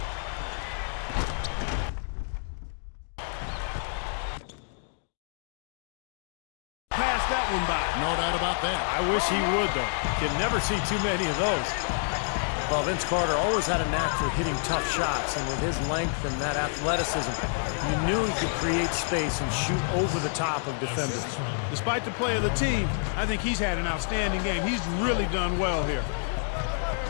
Pass that one by. No doubt about that. I wish he would, though. Can never see too many of those. Well, Vince Carter always had a knack for hitting tough shots, and with his length and that athleticism, you knew he could create space and shoot over the top of defenders. Despite the play of the team, I think he's had an outstanding game. He's really done well here.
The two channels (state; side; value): silent; right; digital silence